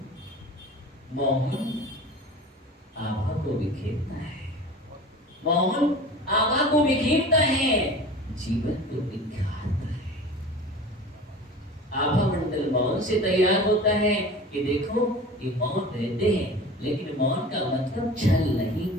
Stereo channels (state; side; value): normal; both; correlation 0.38